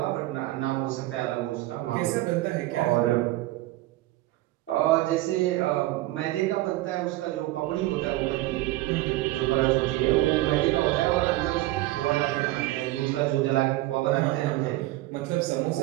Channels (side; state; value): left; quieter; 17.4 dB